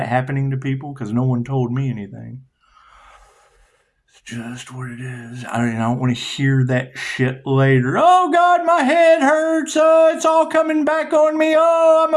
happening to people? Because no one told me anything. It's just what it is. I don't want to hear that shit later. Oh, God, my head hurts. It's all coming back on me. Oh, I'm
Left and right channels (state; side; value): identical; both; correlation 1.00